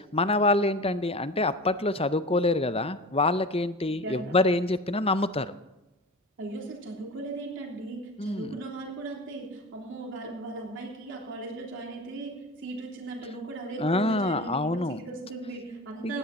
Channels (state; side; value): normal; both; correlation 0.33